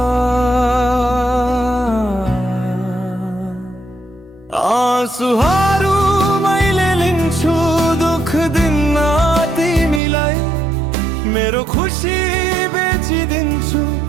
आँसुहरू मैले लिन्छु, दुःख दिन्न तिमीलाई। मेरो खुसी बेचिदिन्छु,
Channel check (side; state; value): left; drops out; at 10.0 s